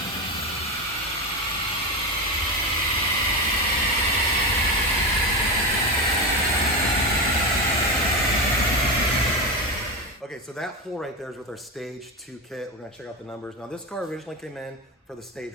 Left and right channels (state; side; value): normal; both; correlation 0.17